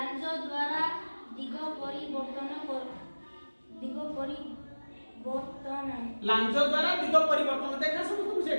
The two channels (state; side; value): inverted; both; correlation -1.00